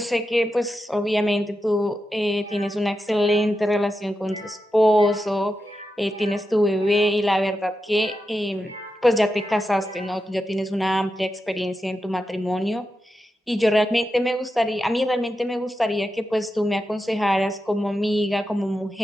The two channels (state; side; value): normal; both; correlation 0.88